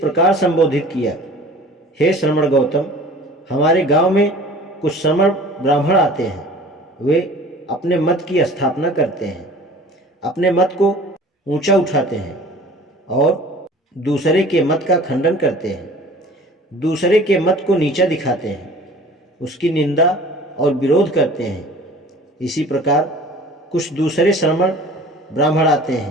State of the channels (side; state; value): both; normal; correlation 0.45